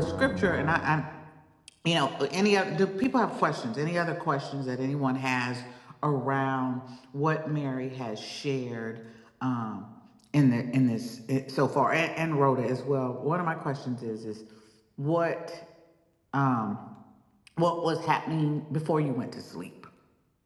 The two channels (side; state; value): both; identical; correlation 1.00